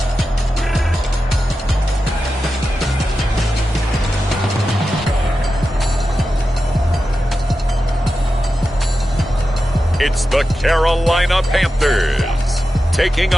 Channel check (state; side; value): normal; both; correlation 0.91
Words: It's the Carolina Panthers taking